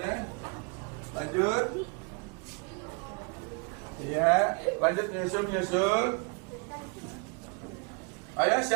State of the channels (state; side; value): quieter; left; 32.6 dB